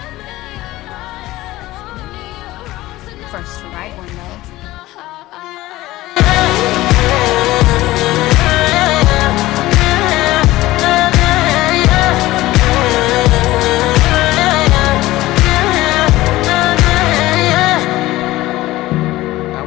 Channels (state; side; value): quieter; right; 17.4 dB